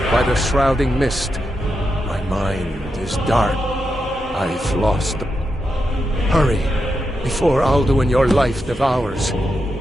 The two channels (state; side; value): normal; both; correlation 0.86